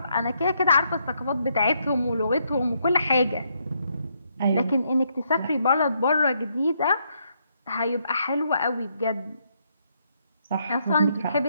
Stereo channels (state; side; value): inverted; both; correlation -0.75